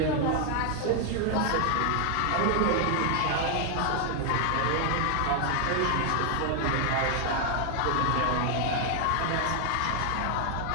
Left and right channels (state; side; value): different; both; correlation 0.00